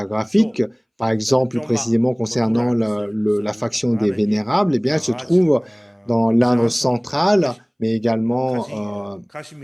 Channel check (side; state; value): both; identical; correlation 1.00